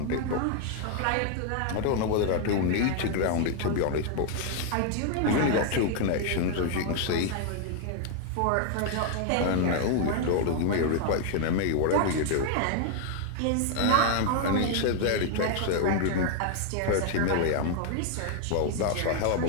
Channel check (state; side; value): different; both; correlation 0.00